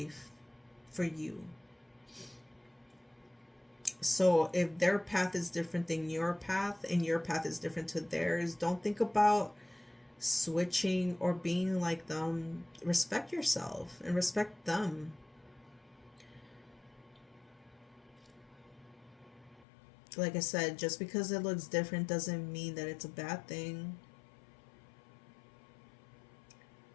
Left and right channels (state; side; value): drops out; right; at 19.7 s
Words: for you. So if their path is different than your path and your path is different to theirs, don't think about switching or being like them. Respect yourself and respect them. Like I said, just because it looks different doesn't mean that it's a bad thing.